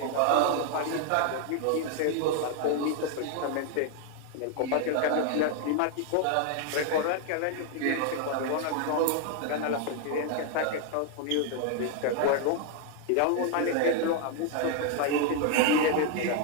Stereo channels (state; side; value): different; both; correlation 0.00